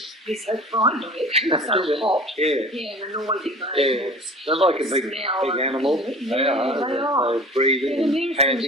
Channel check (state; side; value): normal; both; correlation 0.42